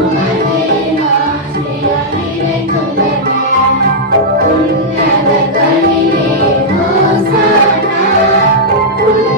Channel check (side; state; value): both; normal; correlation -0.07